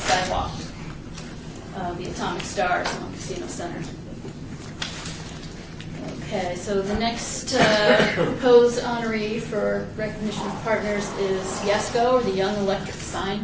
the atomic stars along Casino Center. Okay, so the next proposed honoree for recognition of partners is YESCO, or the Young Electric Sign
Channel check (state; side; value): identical; both; correlation 1.00